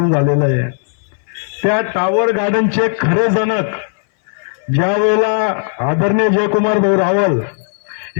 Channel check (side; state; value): right; silent; 62 dB below the other